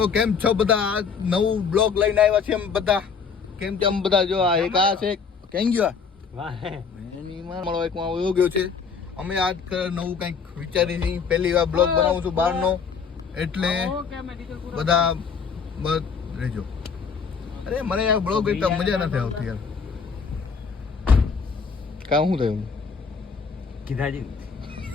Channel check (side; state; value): right; quieter; 5.8 dB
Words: કેમ છો બધા? આ નવું બ્લોગ લઈને આવ્યા છે. એમ બધા કેમ છે? આમ બધા જો આ એક આ છે કેમ ગયો એની મારો એક માં વયો ગયો છે. અમે આજ નવું કંઈક વિચારી છીએ. પહેલી વાર બ્લોગ બનાવું છું બહારનો, એટલે બધા બસ રહેજો. અરે મને આ બ્લોગ એકદમ મજા નથી આવતી યાર. કામ શું થયું? કીધાજી